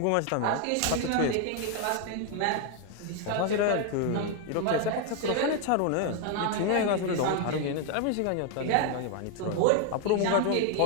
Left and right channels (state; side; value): different; both; correlation 0.00